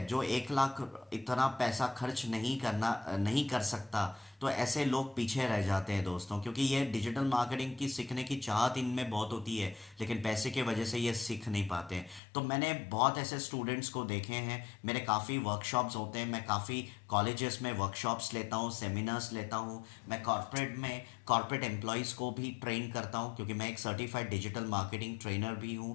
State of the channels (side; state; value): right; drops out; at 12.2 s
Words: जो 1 लाख इतना पैसा खर्च नहीं कर सकता, तो ऐसे लोग पीछे रह जाते हैं दोस्तों, क्योंकि ये डिजिटल मार्केटिंग की सीखने की चाहत इनमें बहुत होती है लेकिन पैसे की वजह से ये सीख नहीं पाते। तो मैंने बहुत ऐसे स्टूडेंट्स को देखे हैं, मेरे काफ़ी वर्कशॉप्स होते हैं, मैं काफ़ी कॉलेजेस में वर्कशॉप्स लेता हूँ, सेमिनार्स लेता हूँ। मैं कॉर्पोरेट एम्प्लॉयज़ को भी ट्रेन करता हूँ क्योंकि मैं एक सर्टिफाइड डिजिटल मार्केटिंग ट्रेनर भी